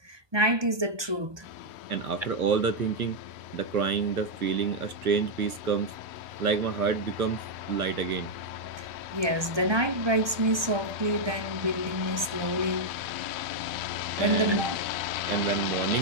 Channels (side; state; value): left; late; 1.2 ms